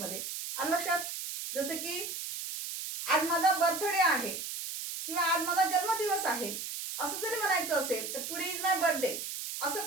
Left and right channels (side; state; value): right; noise; hiss, 6 dB below the sound